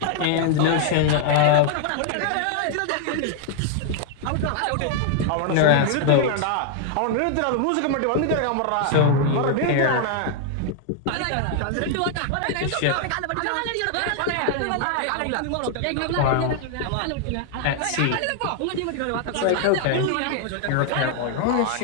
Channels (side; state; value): both; different; correlation 0.00